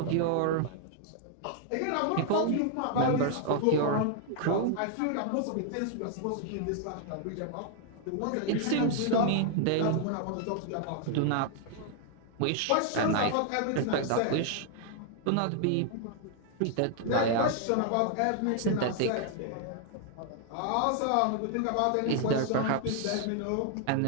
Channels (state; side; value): different; both; correlation 0.00